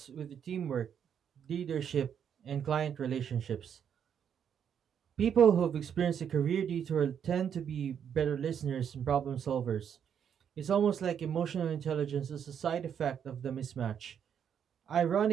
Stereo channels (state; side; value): quieter; left; 8.3 dB